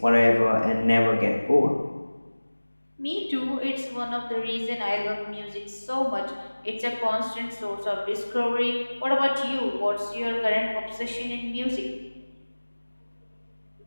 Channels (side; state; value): both; inverted; correlation -1.00